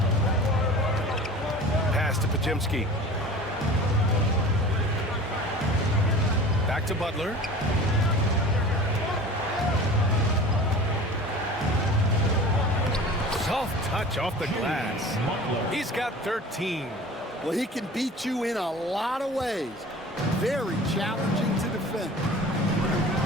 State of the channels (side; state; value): both; normal; correlation 0.40